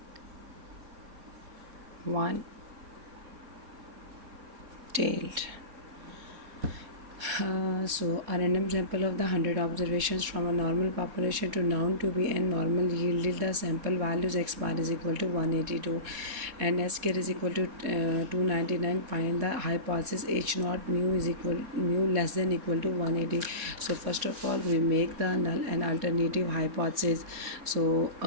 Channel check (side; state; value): left; late; 4.3 ms